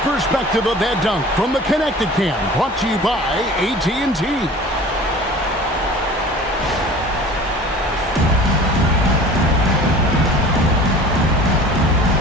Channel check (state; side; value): normal; both; correlation 0.43